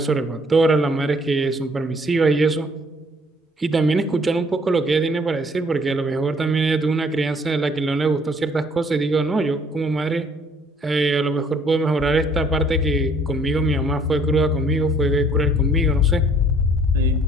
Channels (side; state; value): both; normal; correlation 0.61